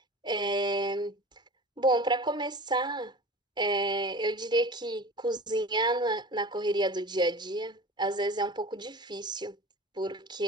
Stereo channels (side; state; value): both; normal; correlation 0.37